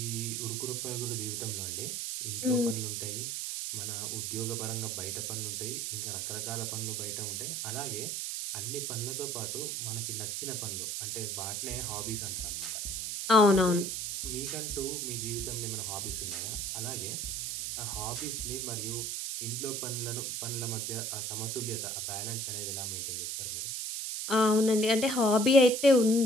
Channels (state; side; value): noise; right; hiss, 2 dB below the sound